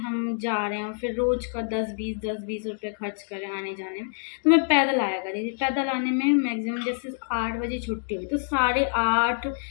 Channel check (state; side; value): silent; right; digital silence